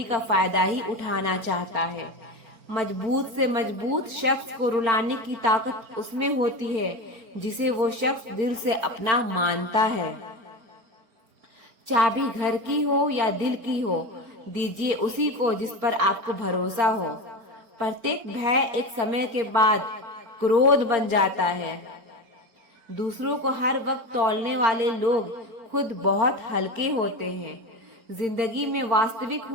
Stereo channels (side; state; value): left; late; 4.4 ms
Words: का फायदा ही उठाना चाहता है। मजबूत से मजबूत शख्स को रुलाने की ताकत उसमें होती है जिसे वो शख्स दिल से अपना मानता है। चाबी घर की हो या दिल की हो, दीजिए उसी को जिस पर आपको भरोसा हो। प्रत्येक भय एक समय के बाद क्रोध बन जाता है। दूसरों को हर वक्त तौलने वाले लोग खुद बहुत हल्के होते हैं। जिंदगी में वास्तविक